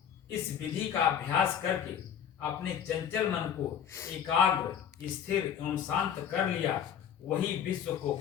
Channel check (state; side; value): quieter; right; 8.7 dB